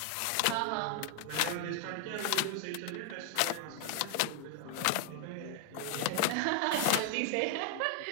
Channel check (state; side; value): different; both; correlation 0.00